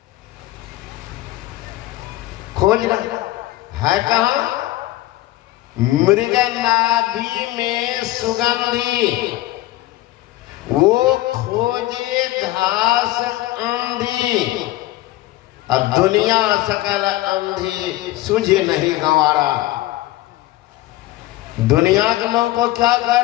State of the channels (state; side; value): quieter; right; 16.9 dB